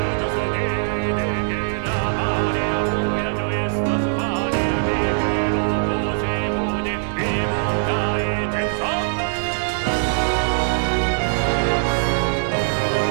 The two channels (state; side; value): silent; left; digital silence